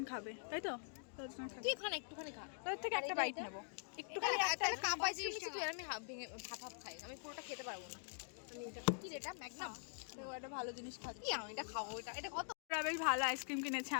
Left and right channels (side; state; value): right; silent; digital silence